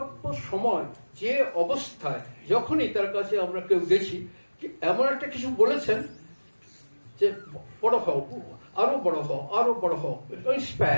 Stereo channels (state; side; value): inverted; both; correlation -1.00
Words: সময় যে অবস্থায় যখনই তার কাছে আমরা কেউ গেছি, এমন একটা কিছু বলেছেন যে বড় হও, আরো বড় হও, আরো বড় হও,